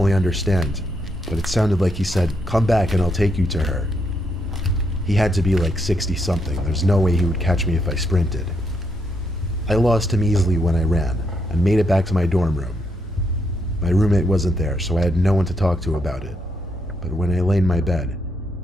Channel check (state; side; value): normal; both; correlation 0.78